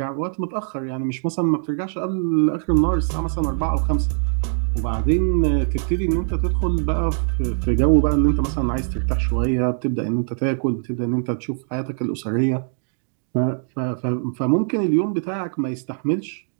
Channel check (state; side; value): silent; left; digital silence